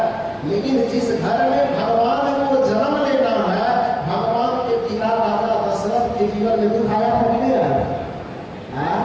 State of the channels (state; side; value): identical; both; correlation 1.00